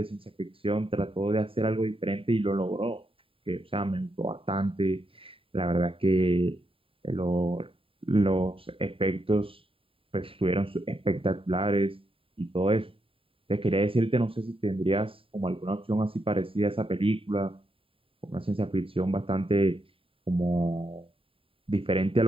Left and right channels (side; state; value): left; late; 0.27 ms